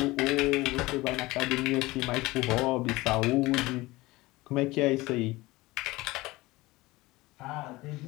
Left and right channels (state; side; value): quieter; right; 20.3 dB